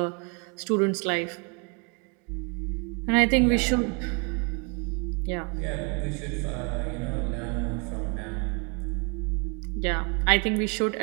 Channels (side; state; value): left; quieter; 33.8 dB